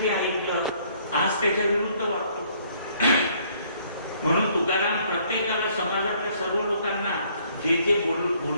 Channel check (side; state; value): both; inverted; correlation -0.63